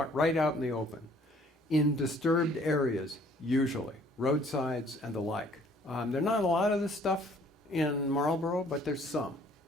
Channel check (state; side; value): normal; both; correlation 0.58